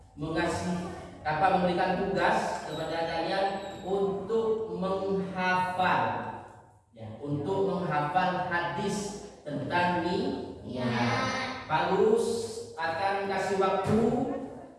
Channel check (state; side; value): identical; both; correlation 1.00